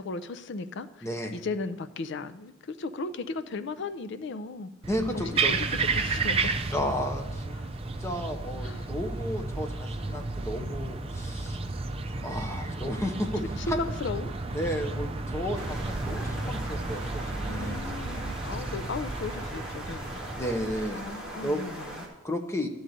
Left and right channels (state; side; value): normal; both; correlation 0.47